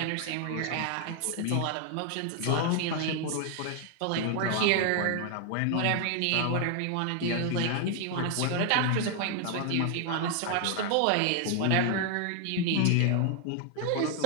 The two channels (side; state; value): both; different; correlation 0.00